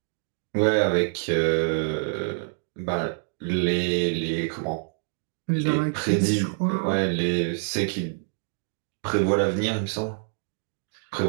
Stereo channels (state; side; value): silent; left; 61 dB below the other